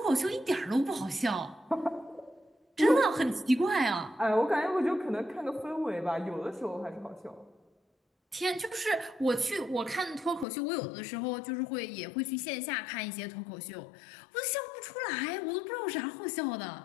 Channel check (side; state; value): right; drops out; at 10.5 s